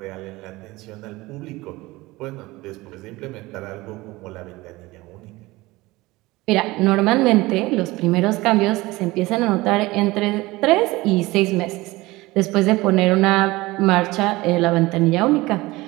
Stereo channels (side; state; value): left; quieter; 20.4 dB